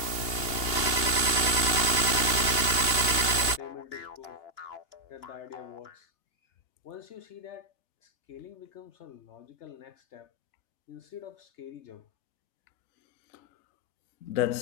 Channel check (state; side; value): late; right; 3.5 ms